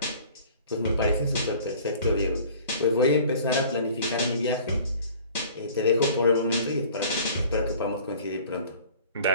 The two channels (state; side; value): inverted; both; correlation -0.48